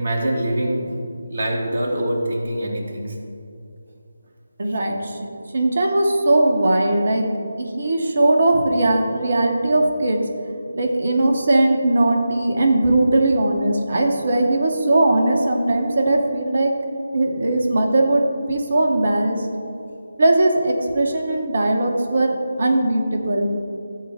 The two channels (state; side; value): inverted; both; correlation -0.91